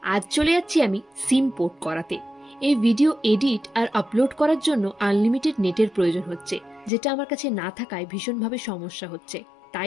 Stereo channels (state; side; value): drops out; right; at 6.9 s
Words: আজ চলে যাচ্ছি আমি সিম পোর্ট করাতে। এই ভিডিও এডিট আর আপলোড করার জন্য আনলিমিটেড নেটের প্রয়োজন হচ্ছে, যেটা আমার কাছে না থাকায় ভীষণভাবে সমস্যা হচ্ছে।